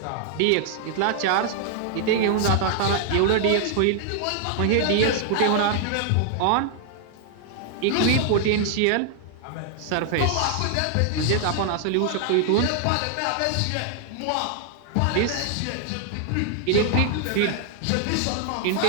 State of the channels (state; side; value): different; both; correlation 0.00